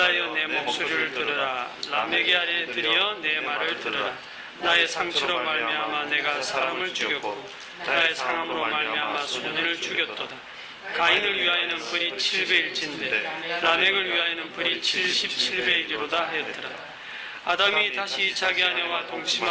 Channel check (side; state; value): both; identical; correlation 1.00